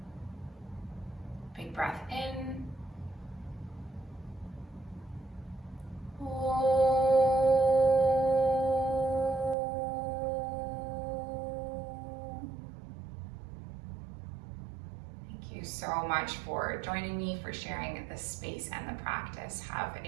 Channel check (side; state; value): left; drops out; at 9.6 s